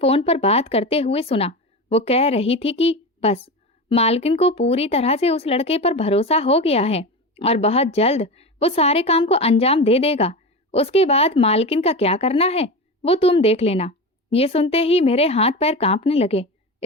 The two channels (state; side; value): normal; both; correlation 0.24